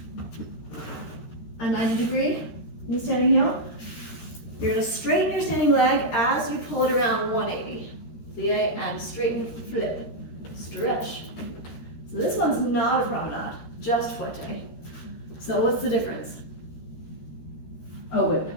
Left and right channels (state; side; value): late; right; 13 ms